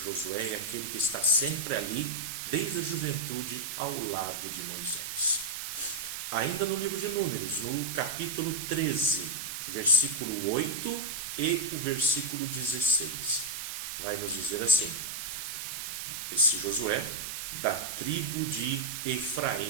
é aquele que está sempre ali, desde a juventude, ao lado de Moisés. Ainda no livro de Números, no capítulo 13, versículo 8 e o versículo 16, vai nos dizer assim: esse Josué, da tribo de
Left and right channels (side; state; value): right; noise; hiss, 5 dB below the sound